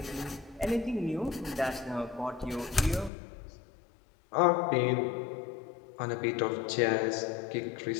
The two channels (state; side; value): drops out; right; at 3.1 s